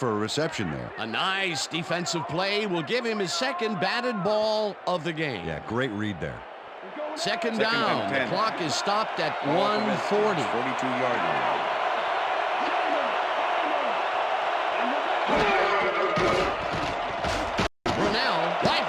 a reception there. A nice defensive play will give him his second batted ball of the game. Yeah, great read there. Second down. The clock is stopped at 1:40. 42-yard line.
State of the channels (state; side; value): identical; both; correlation 1.00